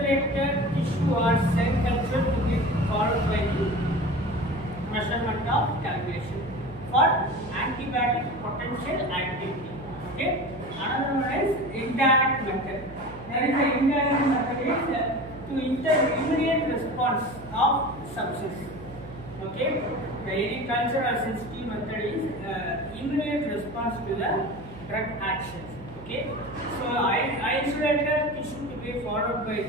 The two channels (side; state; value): right; noise; hum, 16 dB below the sound